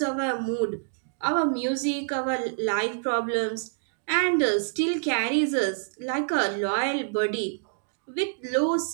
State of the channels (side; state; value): left; silent; digital silence